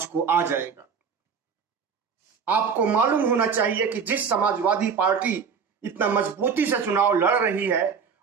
को आ जाएगा। आपको मालूम होना चाहिए कि जिस समाजवादी पार्टी इतना मजबूती से चुनाव लड़ रही है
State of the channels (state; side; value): quieter; left; 6.2 dB